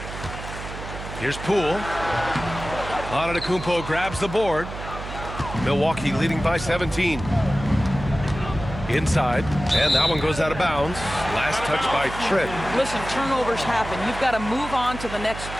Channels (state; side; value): noise; right; hum, 10 dB below the sound